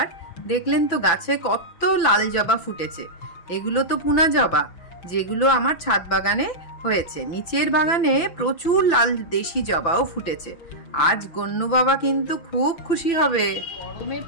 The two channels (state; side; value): late; right; 6.0 ms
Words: দেখলেন তো গাছে কত লাল জবা ফুটেছে। এগুলো তো পুনা জবা, যেগুলো আমার ছাদ বাগানে হয়েছে। নিচের বাগানে প্রচুর লাল দেশি জবাও ফুটেছে। আজ গন্নু বাবা কিন্তু খুব খুশি হবে। গরমে